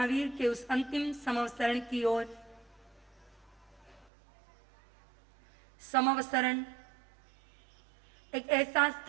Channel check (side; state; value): left; drops out; at 4.0 s